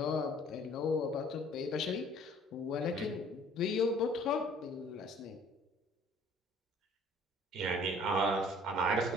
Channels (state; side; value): normal; both; correlation 0.54